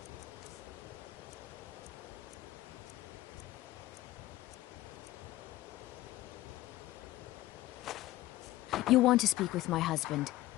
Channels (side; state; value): right; quieter; 16.4 dB